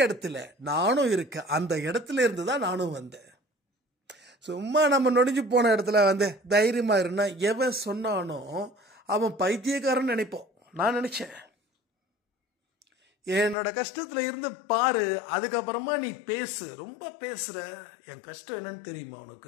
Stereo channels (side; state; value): right; drops out; at 13.6 s